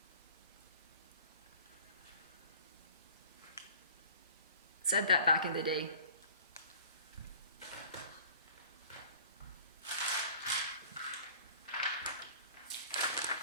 Said that back in the day.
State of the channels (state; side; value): inverted; both; correlation -0.47